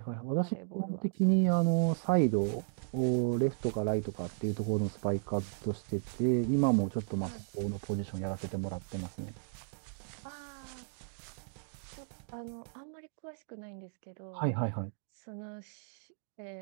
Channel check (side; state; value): left; silent; digital silence